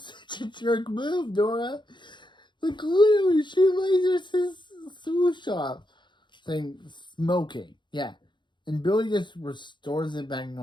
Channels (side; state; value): right; late; 0.23 ms